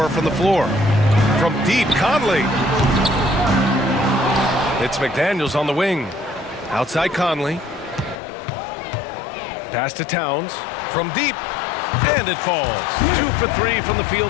from the floor. From deep, Conley. It's McDaniels on the wing. Outside Conley. Pass to Towns. From deep. And it falls. 2 for 3 from the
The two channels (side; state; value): right; drops out; at 8.2 s